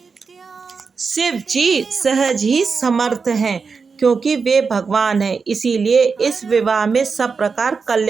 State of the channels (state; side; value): quieter; left; 5.1 dB